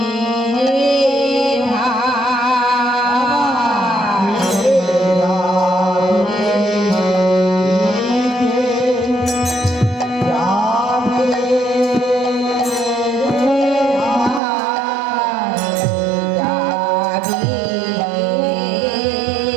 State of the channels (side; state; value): left; drops out; at 14.4 s